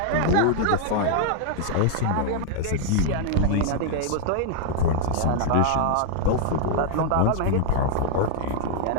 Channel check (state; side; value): different; both; correlation -0.01